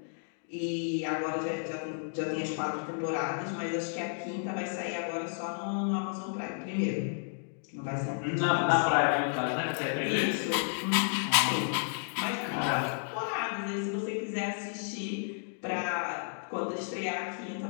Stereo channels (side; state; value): right; silent; digital silence